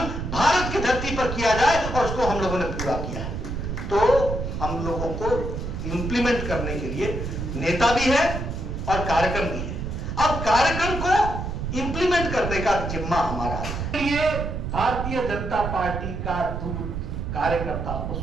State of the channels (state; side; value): noise; right; rumble, 4 dB below the sound